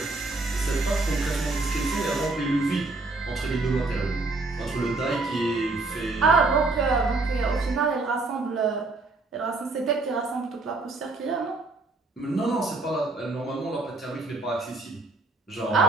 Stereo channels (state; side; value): quieter; left; 3.3 dB